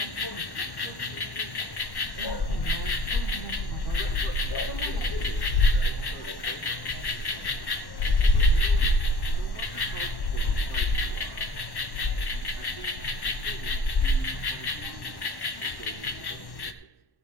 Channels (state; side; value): late; right; 1.1 ms